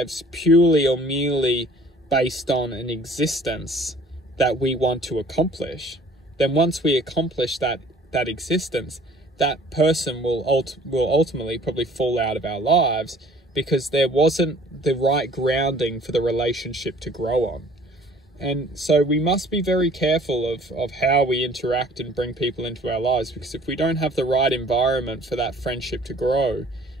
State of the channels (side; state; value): both; normal; correlation 0.53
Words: purely or merely based on an existence that we want to accomplish, then once we accomplish that existence, that person will ultimately probably fall out of our lives because there wasn't the right grounding for the relationship to grow on. And so we must be very careful of how we interact and bring people into our lives, because if we don't have the right environment for that friendship to grow,